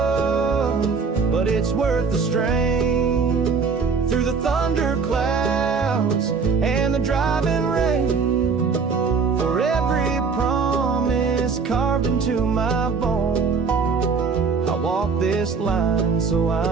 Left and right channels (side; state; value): left; quieter; 5.1 dB